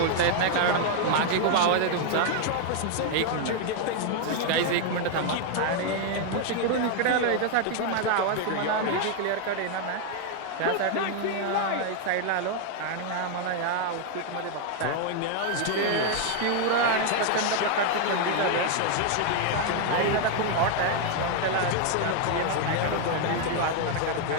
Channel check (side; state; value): both; different; correlation 0.00